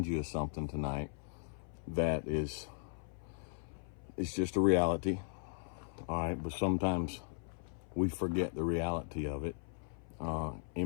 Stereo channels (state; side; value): silent; right; 53 dB below the other